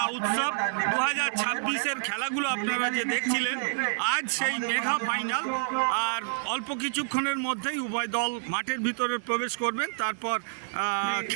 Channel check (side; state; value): left; silent; digital silence